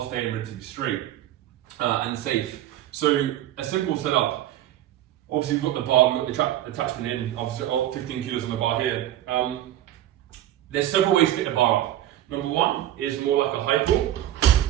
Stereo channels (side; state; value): left; quieter; 12.8 dB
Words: relatively straight and safe. So a simple setup. Obviously we've got the bar, we've got the attachment in, obviously 15 kilos on the bar here. There's several ways to get the bar up. Number one is more like a high pull,